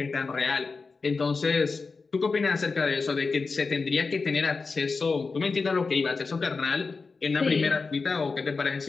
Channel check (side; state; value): right; quieter; 4.3 dB